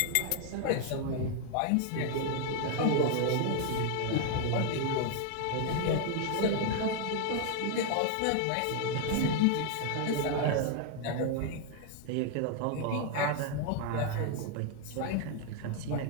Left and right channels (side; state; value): both; different; correlation 0.00